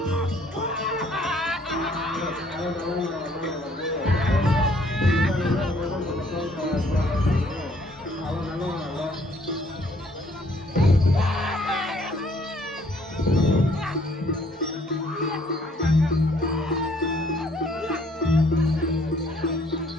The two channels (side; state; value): both; normal; correlation 0.63